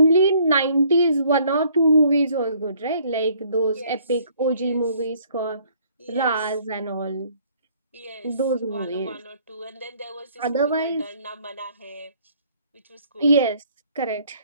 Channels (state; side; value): inverted; both; correlation -0.61